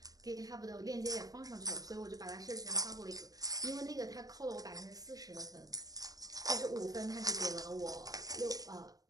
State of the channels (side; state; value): left; late; 0.18 ms